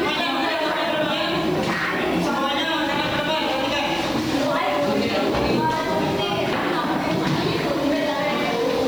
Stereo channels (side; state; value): right; noise; hiss, 23 dB below the sound